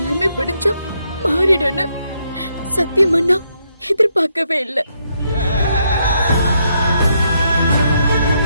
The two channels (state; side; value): inverted; both; correlation -0.77